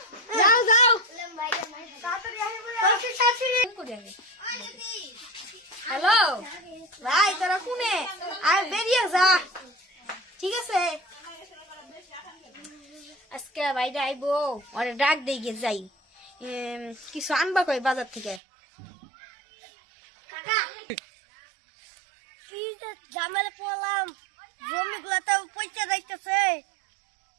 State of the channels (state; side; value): drops out; left; at 18.4 s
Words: যাও যাও। তাড়াতাড়ি আসো বলে। কাশি কাশি করে আগে। হ্যালো ভাই, তোরা কোনে? আর বেরিয়ে যা, ঠিক আছে? আজকে বাইরে আইবো, ওরে ডাক দিয়ে যাই, কিছু আনবা কই বাজার থেকে। কি যে ঝামেলা পড়লাম, জমি গুলাতে পয়সা যাইতেছে,